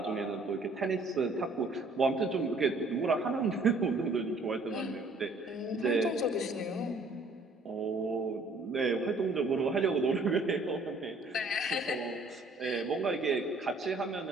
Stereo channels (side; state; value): left; quieter; 3.0 dB